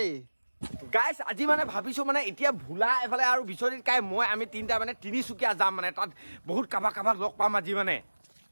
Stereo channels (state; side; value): inverted; both; correlation -1.00